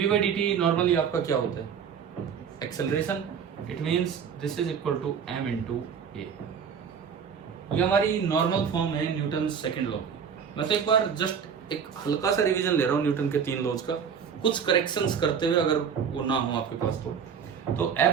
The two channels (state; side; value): quieter; left; 7.1 dB